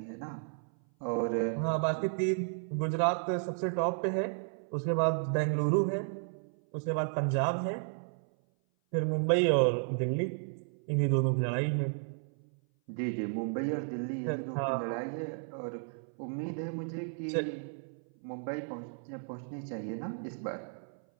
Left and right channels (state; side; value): silent; left; 56 dB below the other